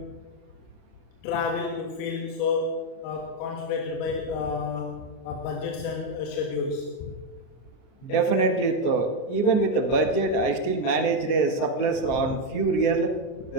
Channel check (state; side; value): late; right; 38 ms